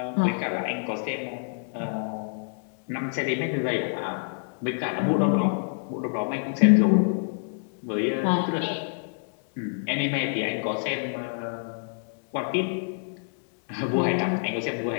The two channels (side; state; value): right; silent; digital silence